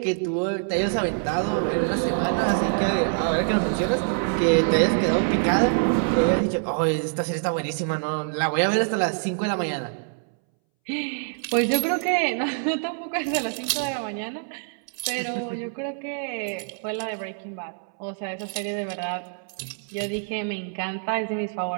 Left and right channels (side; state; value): left; silent; 62 dB below the other